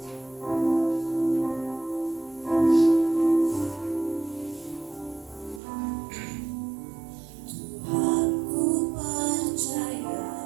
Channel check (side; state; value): left; drops out; at 5.6 s